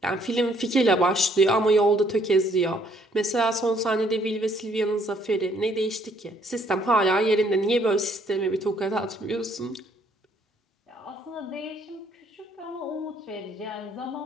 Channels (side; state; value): both; normal; correlation 0.66